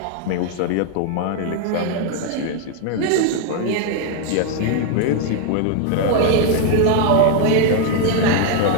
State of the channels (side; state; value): both; different; correlation 0.00